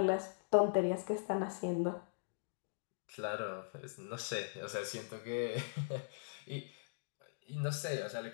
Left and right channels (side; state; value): right; silent; digital silence